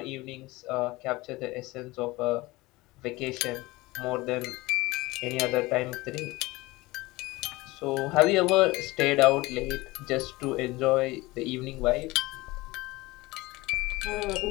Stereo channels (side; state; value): right; quieter; 21.0 dB